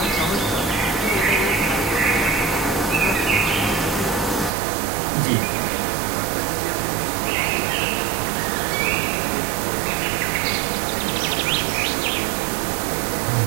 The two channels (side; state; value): left; drops out; at 4.5 s